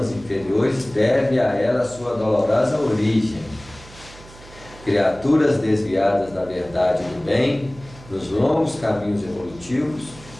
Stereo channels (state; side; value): noise; right; hum, 20 dB below the sound